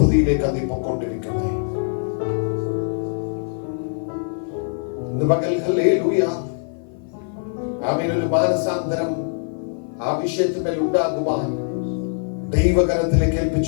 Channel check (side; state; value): right; silent; 56 dB below the other